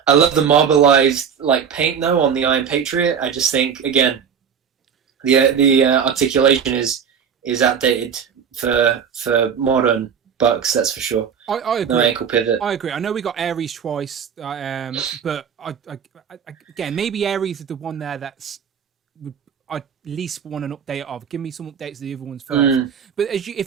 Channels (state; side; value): quieter; left; 7.3 dB